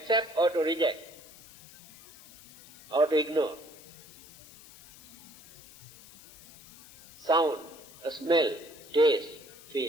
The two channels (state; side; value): noise; left; hiss, 20 dB below the sound